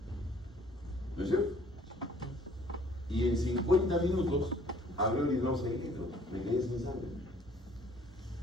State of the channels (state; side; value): normal; both; correlation 0.57